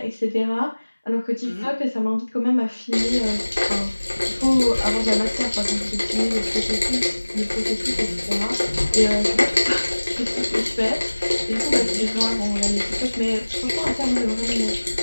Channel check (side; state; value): both; inverted; correlation -1.00